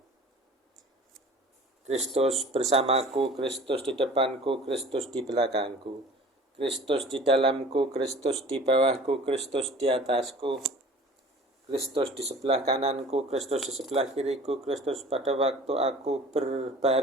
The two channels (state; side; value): normal; both; correlation 0.45